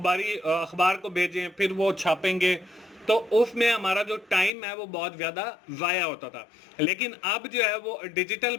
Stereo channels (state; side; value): drops out; right; at 4.5 s